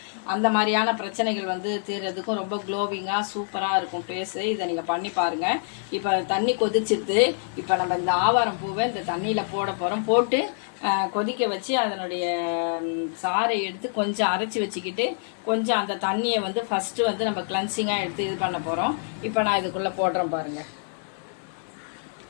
அந்த மாதிரியான பிரச்சனைகள் தீர்றதுக்கும் ரொம்ப க்ளோவிங்காக சூப்பராக இருக்கும் ஃபேஸு. இதை நீங்கள் பண்ணி பாருங்கள். இப்போ தண்ணி கொதிச்சிட்டு இப்போ நம்ம இந்த ஆவாரம் பூவை இந்த தண்ணியில் போட போகிறோம். போட்டு கொதிக்க வச்சு அதனுடைய சாறை எடுத்து கொஞ்சம் அரைச்சி வச்சுக்கிட்டு கொஞ்சம் அந்த தண்ணியை ஃபஸ்ட்டு நம்ம கிளென்சிங்காக எடுத்து இது பண்ண போகிறோம். இப்போ நான் இதுக்குள்ளே போடுறேன் பாருங்கள்.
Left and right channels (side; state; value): right; silent; 61 dB below the other